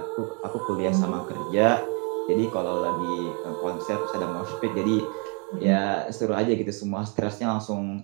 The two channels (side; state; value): left; quieter; 35.9 dB